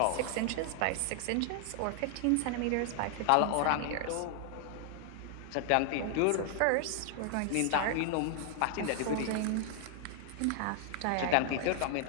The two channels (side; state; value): both; different; correlation 0.00